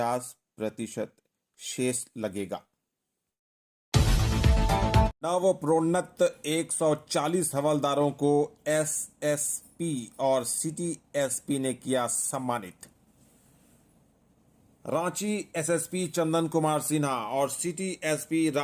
शेष लगेगा। नवप्रोन्नत 140 हवलदारों को एसएसपी और सिटी एसपी ने किया सम्मानित। रांची एसएसपी चंदन कुमार सिन्हा और सिटी एसपी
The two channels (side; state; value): both; identical; correlation 1.00